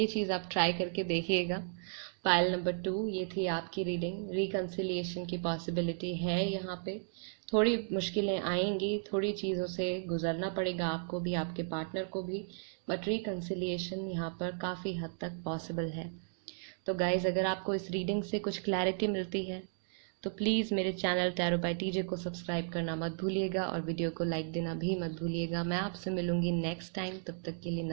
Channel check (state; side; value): silent; left; digital silence